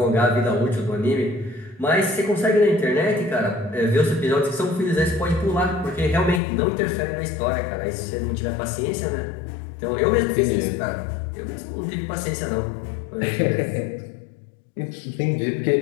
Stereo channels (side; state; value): right; drops out; at 6.4 s